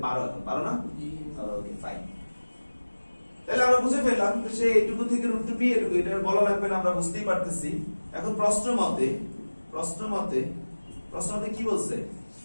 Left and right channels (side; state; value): both; inverted; correlation -1.00